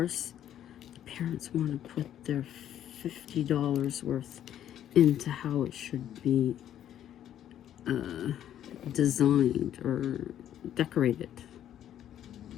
the parents want to put their $50 worth into how it should be designed or decorated.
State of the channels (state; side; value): quieter; right; 10.9 dB